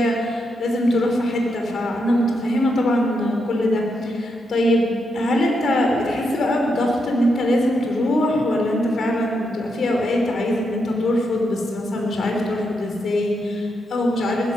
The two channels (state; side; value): normal; both; correlation 0.82